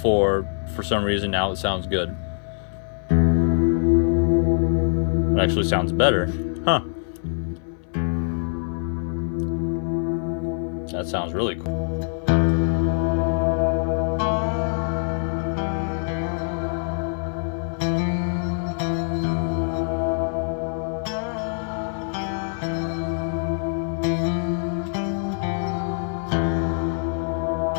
For some reason now it sounds good. It actually sounds better. Huh. That sounds really cool.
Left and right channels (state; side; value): silent; right; 57 dB below the other